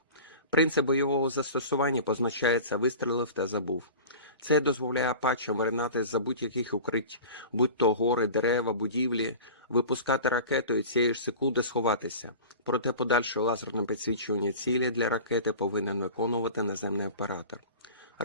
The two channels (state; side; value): inverted; both; correlation -0.37